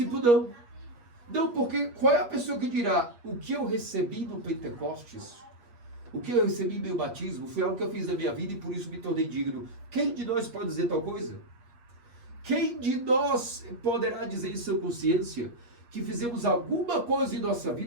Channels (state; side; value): late; left; 8.4 ms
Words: não. Não, porque qual é a pessoa que dirá o que eu recebi no Pentecostes? O que eu recebi em meu batismo foi algo que eu fiz na minha vida e por isso me tornei digno. Quem de nós pode dizer tal coisa? Quem de nós poderá dizer em sua consciência que fizemos alguma coisa em nossa